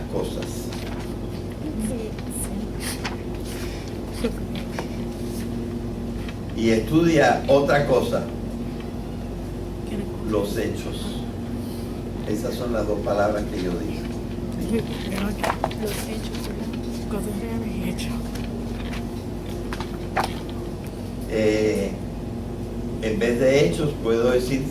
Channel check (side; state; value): both; identical; correlation 1.00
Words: cosas. Y estudia otra cosa, los hechos. Esas son las dos palabras que yo dije. Los hechos, cosas reales y hechos. En vez de hechos puedo decir